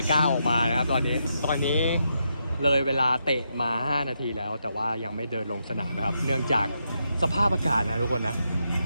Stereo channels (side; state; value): both; inverted; correlation -0.82